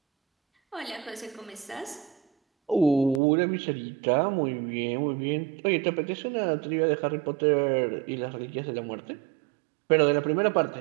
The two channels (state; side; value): drops out; left; at 3.2 s